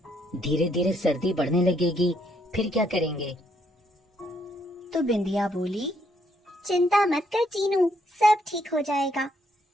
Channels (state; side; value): normal; both; correlation 0.72